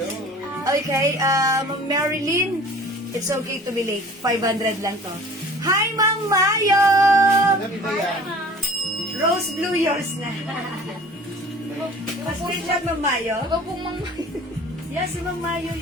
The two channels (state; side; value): normal; both; correlation 0.46